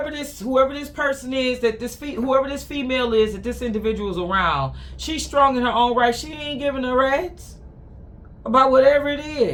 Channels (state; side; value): identical; both; correlation 1.00